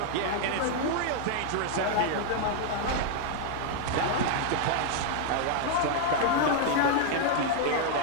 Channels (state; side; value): different; both; correlation 0.00